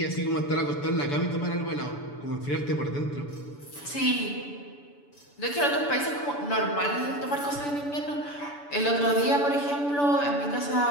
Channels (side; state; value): right; late; 7.0 ms